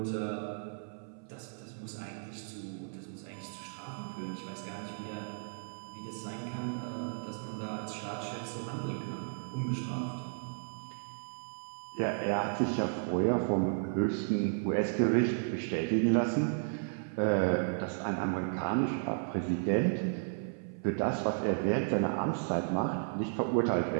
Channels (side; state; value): left; silent; 55 dB below the other